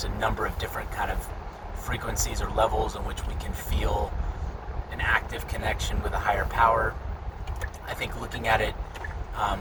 a number of different kind of frequencies or levels in which we can feel an active connection with a higher power. I think looking at it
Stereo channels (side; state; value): both; identical; correlation 1.00